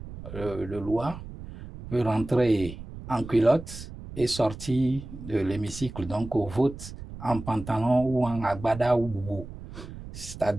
de loi peut rentrer en culotte et sortir de l'hémicycle, donc au vote en pantalon ou en agbada ou boubou.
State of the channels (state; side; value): noise; right; rumble, 12 dB below the sound